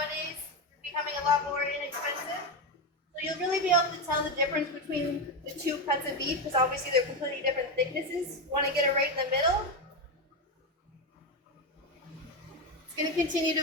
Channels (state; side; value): normal; both; correlation 0.12